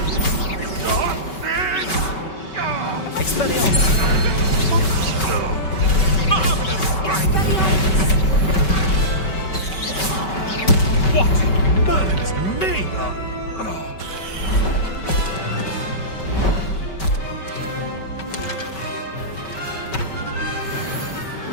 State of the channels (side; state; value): right; late; 5.2 ms